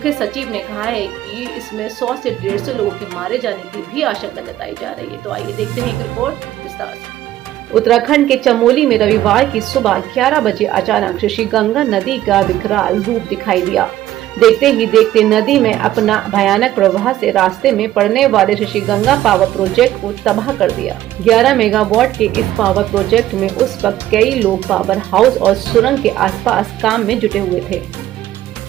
सचिव ने कहा है कि इसमें 100 से 150 लोगों के मारे जाने की भी आशंका जताई जा रही है। तो आइए देखते हैं एक रिपोर्ट विस्तार से। उत्तराखंड के चमोली में रविवार की सुबह 11 बजे अचानक ऋषि गंगा नदी का विकराल रूप दिखाई दिया। देखते ही देखते नदी में अपना भयानक प्रवाह से रास्ते में पड़ने वाले ऋषि गंगा पावर प्रोजेक्ट को तबाह कर दिया। 11 मेगावाट के इस पावर प्रोजेक्ट में उस वक्त कई लोग पावर हाउस और सुरंग के आसपास काम में जुटे हुए थे।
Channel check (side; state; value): left; quieter; 13.6 dB